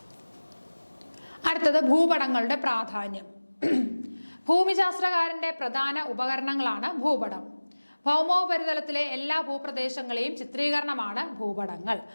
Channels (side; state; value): both; inverted; correlation -1.00